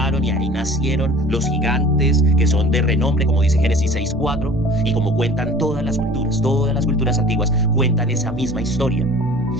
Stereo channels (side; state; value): both; normal; correlation 0.44